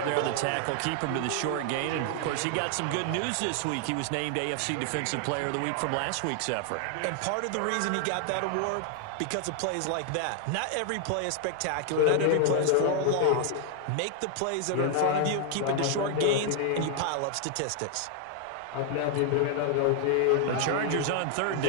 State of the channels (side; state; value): both; different; correlation 0.00